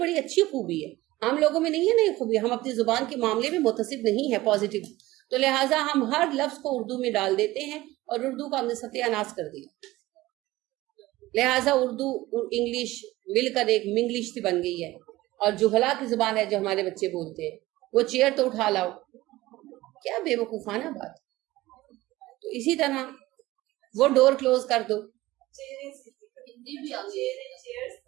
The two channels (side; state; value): left; quieter; 18.0 dB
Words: اچھی خوبی ہے. ہم لوگوں میں نہیں ہے نا یہ خوبی, ہم اپنی زبان کے معاملے میں متصب نہیں ہے پازیٹیو, تو لہٰذا ہم ہر لفظ کو اردو میں ڈال دیتے ہیں اور اردو کا ہم نے ستیہ ناش کر دیا. لہٰذا اردو انگلش مل کر ایک منگلش سی بن گئی ہے, اور جہلا کی زبان ہے جو ہمارے بچے بولتے ہیں, وہ چیئر تو اٹھا لاؤ, کیا بے وقوفانہ بات. تو اسی طرح وہ ڈور کلوز کر دو,